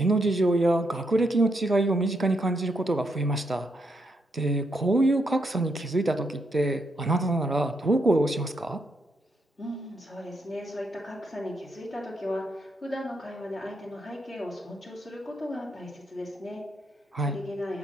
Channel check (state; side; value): normal; both; correlation 0.79